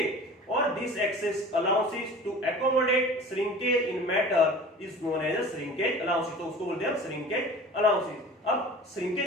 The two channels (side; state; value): both; normal; correlation 0.40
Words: और this excess allowances to accommodate shrinkage in matter is known as a shrinkage allowances. तो उसको बोलते हैं श्रिंकेज अलाउंसेस. अब